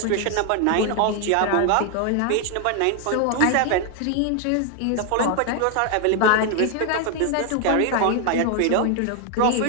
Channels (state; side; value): different; both; correlation 0.00